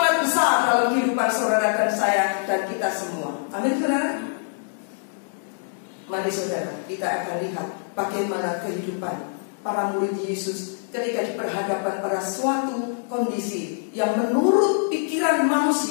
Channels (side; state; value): right; silent; 62 dB below the other